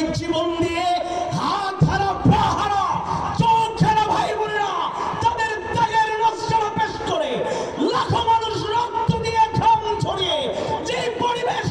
জীবন দিয়ে হাত হারা পা হারা চোখ হারা ভাই বোনেরা তাদের ত্যাগের নজর পেশ করে লাখো মানুষ রক্ত দিয়ে ঘাম ঝরিয়ে যে পরিবেশ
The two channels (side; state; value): both; identical; correlation 1.00